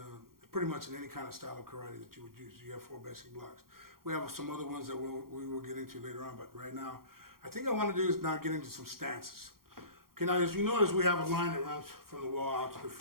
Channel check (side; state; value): left; late; 0.93 ms